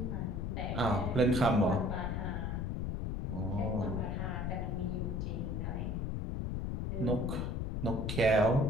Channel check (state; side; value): noise; left; rumble, 2 dB below the sound